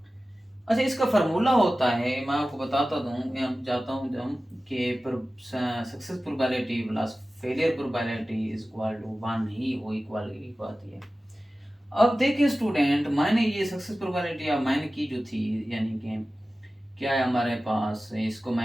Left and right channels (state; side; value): normal; both; correlation 0.96